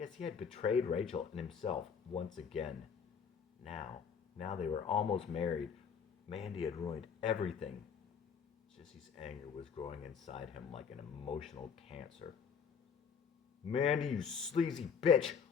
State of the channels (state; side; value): quieter; right; 6.7 dB